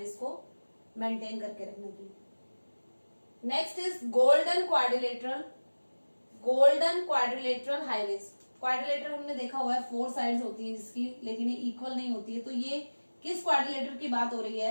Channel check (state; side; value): inverted; both; correlation -1.00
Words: को मेंटेन करके रखने की. Next is golden quadrilateral highways. Quadrilateral हमने देखा हुआ है 4 साइड्स होती है जिसकी, लेकिन ये इक्वल नहीं होती है. तो ये किस क्वाड्रिलेटर की बात हो रही